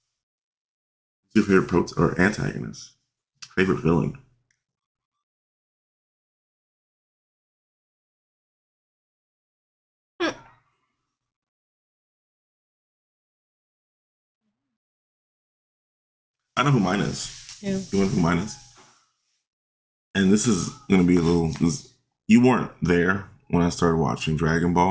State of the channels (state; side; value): identical; both; correlation 1.00